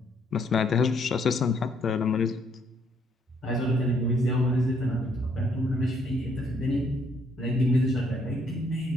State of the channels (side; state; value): both; normal; correlation 0.68